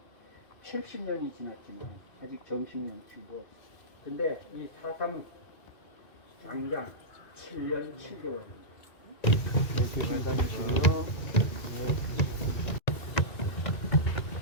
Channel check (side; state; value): right; late; 2.3 ms